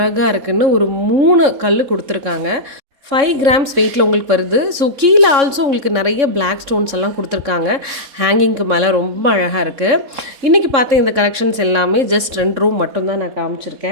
இருக்குன்னு. ஒரு 3 கல் கொடுத்துருக்காங்க. 5 கிராம்ஸ் வெயிட்டில் உங்களுக்கு வருது. ஸோ கீழே ஆல்சோ உங்களுக்கு நிறைய பிளாக் ஸ்டோன்ஸ் எல்லாம் கொடுத்துருக்காங்க. ஹேங்கிங்க்கு மேலே ரொம்ப அழகாக இருக்குது. இன்றைக்கி பார்த்த இந்த கலெக்ஷன்ஸ் எல்லாமே ஜஸ்ட் 2 ரூம் மட்டும்தான் நான்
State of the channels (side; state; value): left; late; 3.6 ms